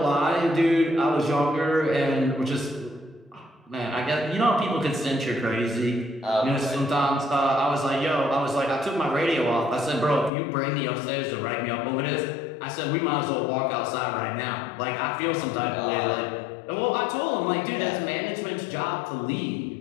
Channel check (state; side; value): drops out; right; at 10.3 s